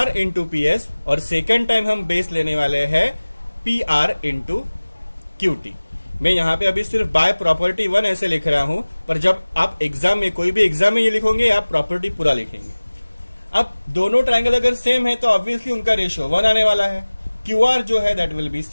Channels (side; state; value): both; inverted; correlation -1.00